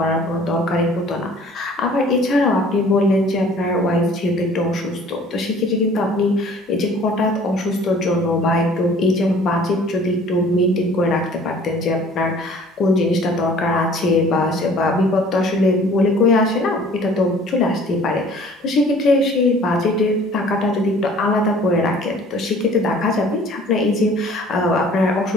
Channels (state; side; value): normal; both; correlation 0.51